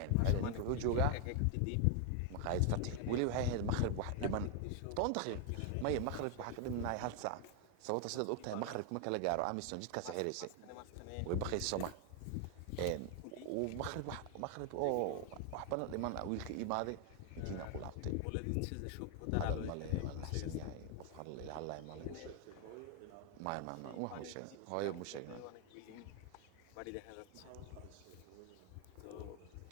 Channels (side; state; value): both; different; correlation 0.00